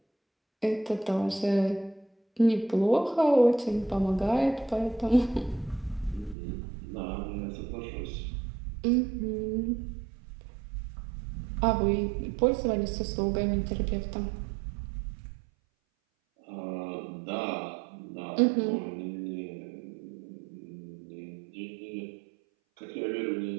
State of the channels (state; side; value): drops out; left; at 6.4 s